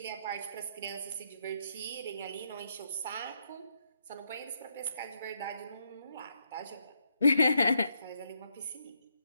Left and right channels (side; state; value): both; inverted; correlation -0.77